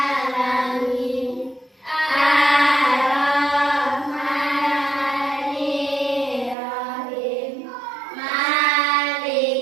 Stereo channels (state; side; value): drops out; left; at 6.6 s